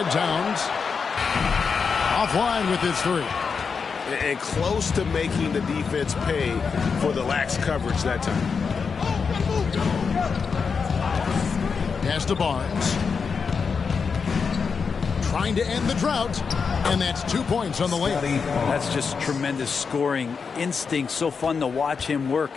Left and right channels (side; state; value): right; quieter; 5.6 dB